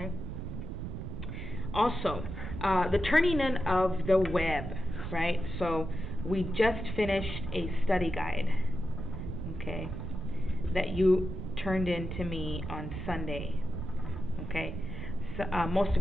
Also, the turning in of the web, right? So we just finished a study guide, okay, that you turned in to me on Sunday, okay? So, most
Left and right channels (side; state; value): right; noise; rumble, 6 dB below the sound